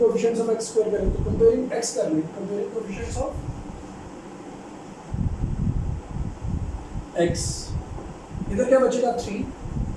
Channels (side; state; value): both; identical; correlation 1.00